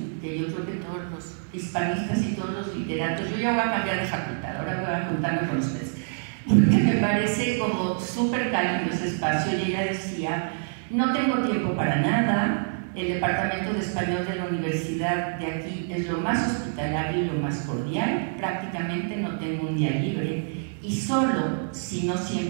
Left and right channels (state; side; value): silent; left; 61 dB below the other